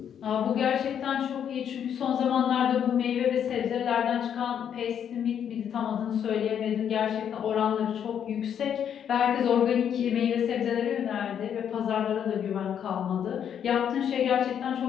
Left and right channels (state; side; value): quieter; right; 8.7 dB